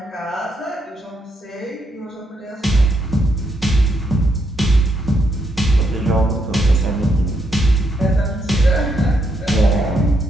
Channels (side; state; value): both; normal; correlation 0.78